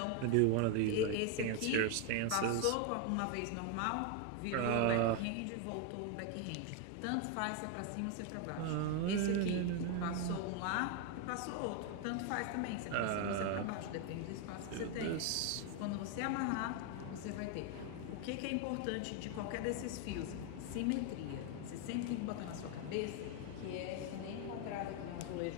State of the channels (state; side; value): different; both; correlation 0.01